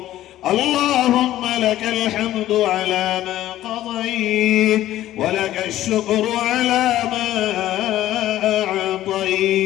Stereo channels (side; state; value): right; quieter; 13.8 dB